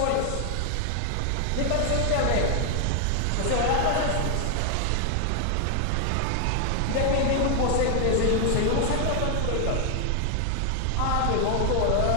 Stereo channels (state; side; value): different; both; correlation 0.00